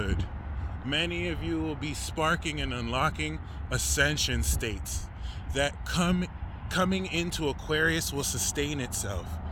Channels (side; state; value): both; identical; correlation 1.00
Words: Many of you will be sparking and unlocking ascension states that coming into Aquarius will sustain itself.